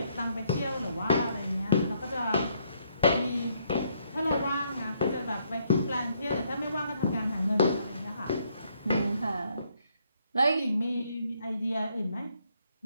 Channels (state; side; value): inverted; both; correlation -0.71